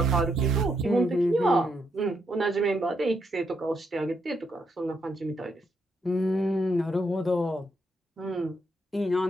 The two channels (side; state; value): both; normal; correlation 0.79